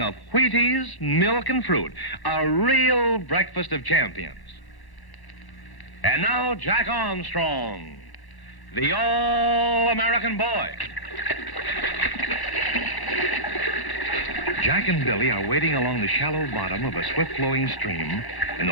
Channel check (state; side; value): late; right; 1.1 ms